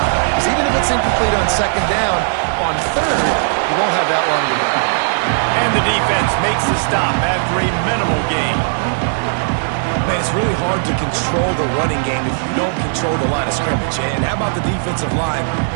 Because even if it's incomplete on second down, on third, you won't have that long to go. And the defense makes the stop after a minimal gain. Man, it's really hard to control the running game if you don't control the line of scrimmage. And how about the defensive line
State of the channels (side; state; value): left; silent; 68 dB below the other